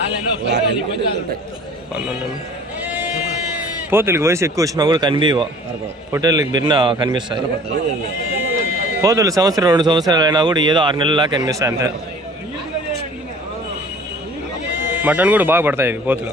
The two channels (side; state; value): both; normal; correlation 0.48